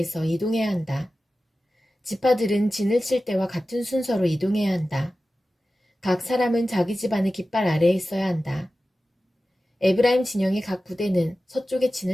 이동해야 한다. 지파들은 진을 칠 때와 같은 순서로 이동해야 한다. 각 사람은 자기 집안의 깃발 아래에 있어야 한다. 에브라임 진영의 각 부대는 서쪽에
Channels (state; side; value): normal; both; correlation 0.95